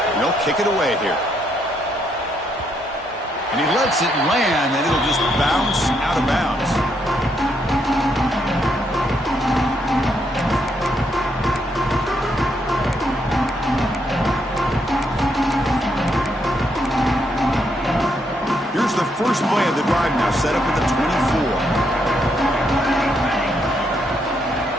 And they'll kick it away here. And he lets it land, and it'll just bounce out of bounds. First play of the drive now, set up at the 24.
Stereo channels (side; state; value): both; normal; correlation 0.76